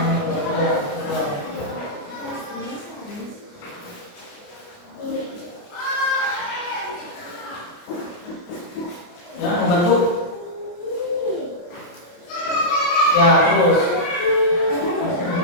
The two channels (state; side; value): late; right; 29 ms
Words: Ya, membantu. Ya, terus.